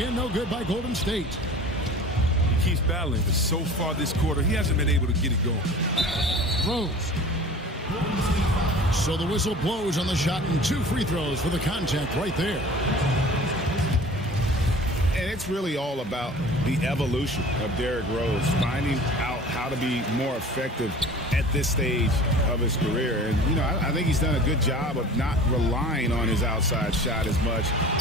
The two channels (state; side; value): normal; both; correlation 0.42